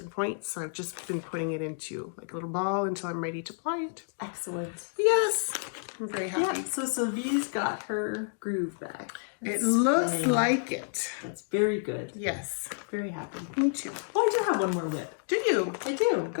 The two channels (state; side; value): silent; right; digital silence